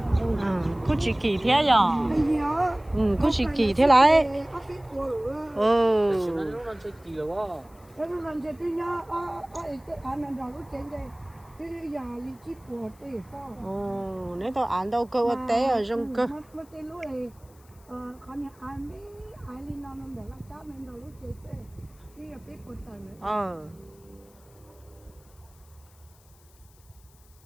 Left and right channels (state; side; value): noise; left; hiss, 29 dB below the sound